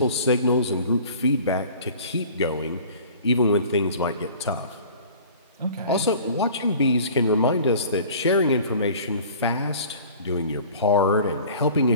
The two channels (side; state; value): both; inverted; correlation -0.46